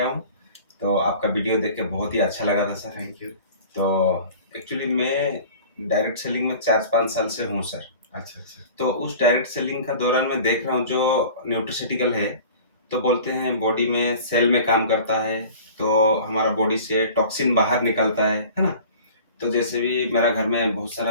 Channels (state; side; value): inverted; both; correlation -0.43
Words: हूँ। तो आपका वीडियो देख के बहुत ही अच्छा लगा था सर। Thank you. तो एक्चुअली मैं डायरेक्ट सेलिंग में 4-5 साल से हूँ सर। अच्छा, अच्छा। तो उस डायरेक्ट सेलिंग का दौरान मैं देख रहा हूँ जो न्यूट्रास्यूटिकल है, तो बोलते हैं बॉडी में सेल में काम करता है, तो हमारा बॉडी से टॉक्सिन बाहर निकलता है ना? तो जैसे भी मेरा घर में बहुत